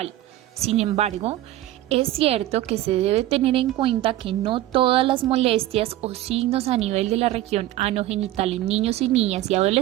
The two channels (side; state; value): left; quieter; 14.6 dB